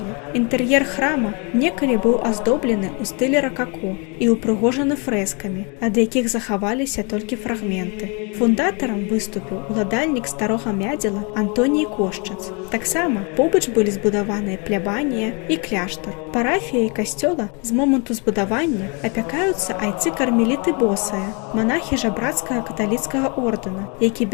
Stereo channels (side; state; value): right; quieter; 32.9 dB